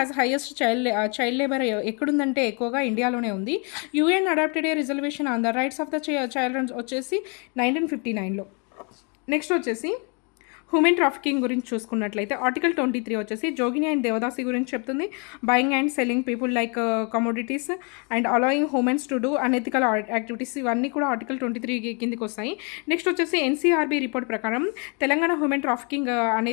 highest child labour ఎక్కడుందంటే ఎక్కువగా ఇండియాలోనే ఉంది. UN adopted a reservation on the rights of the child వచ్చేసి 1959లో. నెక్స్ట్ వచ్చేసి హ్యూమన్ ట్రాఫికింగ్ గురించి చూసుకున్నట్లయితే ఆర్టికల్ 23 వచ్చేసి జోగిని అండ్ దేవదాసి గురించి చెప్తుంది. Buying and selling people like commodities and allowing humans to do unethical activities, ఇవన్నీ కూడా ఆర్టికల్ 23 కిందికి వస్తాయి. నెక్స్ట్ వచ్చేసి ఎన్సీఆర్బీ రిపోర్ట్ ప్రకారం తెలంగాణ హ్యూమన్ ట్రాఫికింగ్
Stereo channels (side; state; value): right; quieter; 34.9 dB